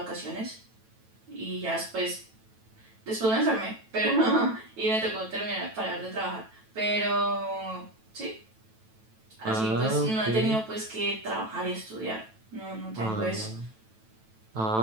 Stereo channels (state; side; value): late; left; 9.1 ms